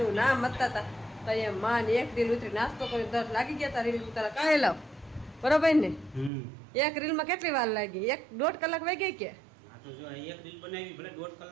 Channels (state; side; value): drops out; left; at 6.3 s